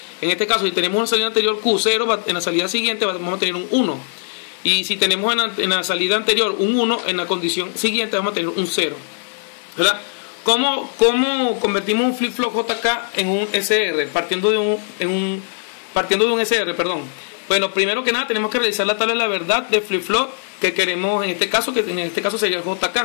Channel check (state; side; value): silent; right; 66 dB below the other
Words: En este caso, si tenemos una salida anterior Q0, en la salida siguiente vamos a tener un 1. Y si tenemos en la salida anterior un 1, en la condición siguiente vamos a tener un 0, ¿verdad? ¿Cómo convertimos un flip-flop JK en un SR? Partiendo de un SR, perdón. Bueno, primero que nada tenemos que realizar la tabla de la verdad de flip-flop que queremos en este caso sería el